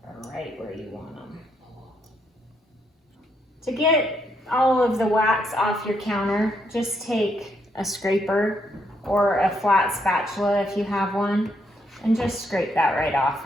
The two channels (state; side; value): normal; both; correlation 0.75